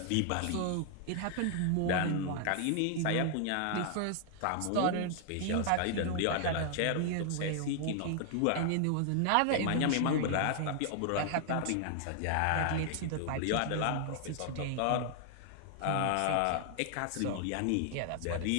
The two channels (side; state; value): both; different; correlation 0.00